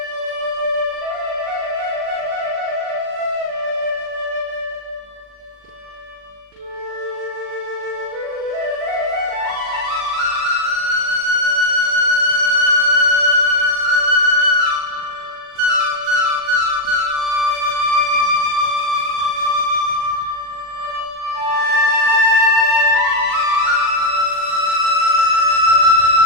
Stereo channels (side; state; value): left; late; 40 ms